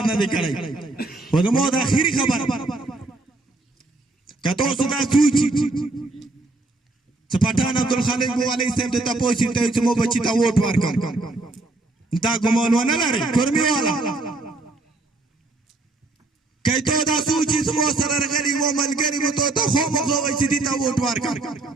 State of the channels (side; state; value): left; quieter; 3.1 dB